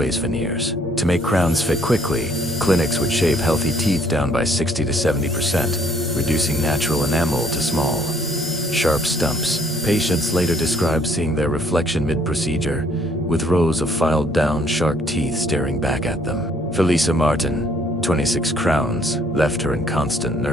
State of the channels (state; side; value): normal; both; correlation 0.64